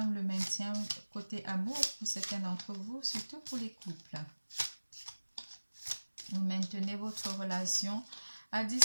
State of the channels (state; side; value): inverted; both; correlation -1.00